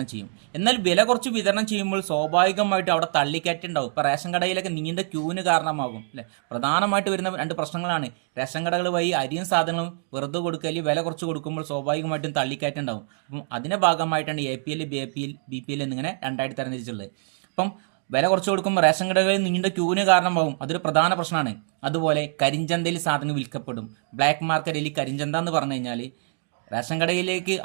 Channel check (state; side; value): silent; left; 62 dB below the other